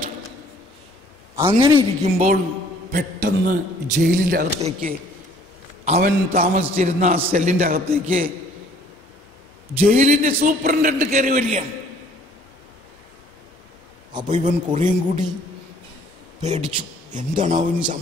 അങ്ങനെ ഇരിക്കുമ്പോൾ പെട്ടെന്ന് ജയിലിൻ്റെ അകത്തേക്ക് അവൻ താമസിച്ചിരുന്ന ആ സെല്ലിൻ്റെ അകത്തേക്ക് ജയിലിൻ്റെ സൂപ്രണ്ടന്റ് കയറി വരികയാണ്. അപ്പോൾ ഇവൻ കുറേയും കൂടി പേടിച്ചു, എന്താണ് അവന്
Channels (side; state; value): both; normal; correlation 0.57